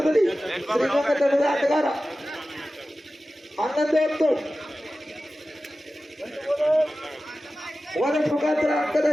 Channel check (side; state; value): both; normal; correlation 0.95